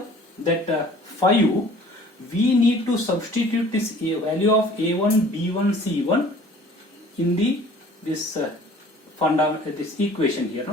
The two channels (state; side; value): normal; both; correlation 0.50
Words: that 5. We need to substitute this value of A1, B1, C1 in the this this equation here.